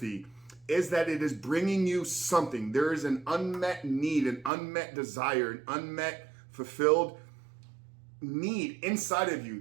is that it is bringing you something. There is an unmet need, an unmet desire, an unmet fulfilled need inside of you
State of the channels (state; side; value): drops out; left; at 4.5 s